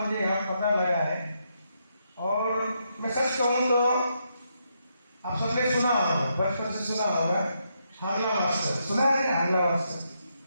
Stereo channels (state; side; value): inverted; both; correlation -0.79